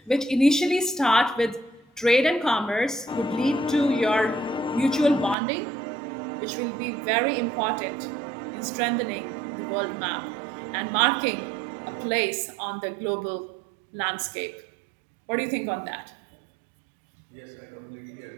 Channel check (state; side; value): drops out; left; at 5.4 s